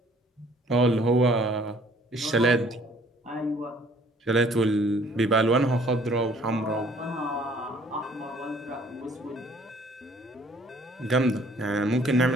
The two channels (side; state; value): both; normal; correlation 0.58